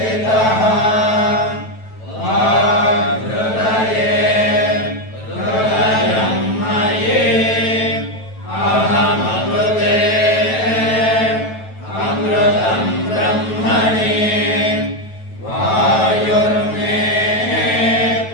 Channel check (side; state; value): right; late; 9.2 ms